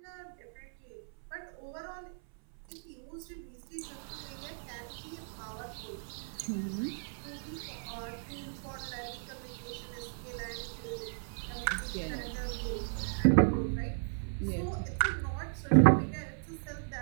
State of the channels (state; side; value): silent; left; 54 dB below the other